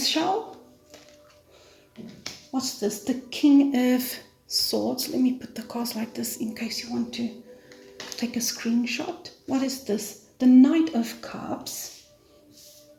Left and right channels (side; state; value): both; identical; correlation 1.00